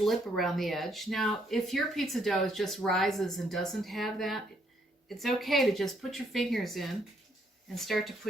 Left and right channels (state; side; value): normal; both; correlation 0.71